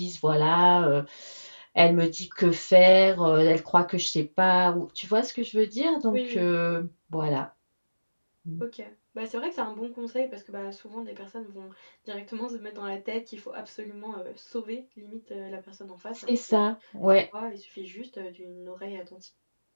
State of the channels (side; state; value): both; inverted; correlation -1.00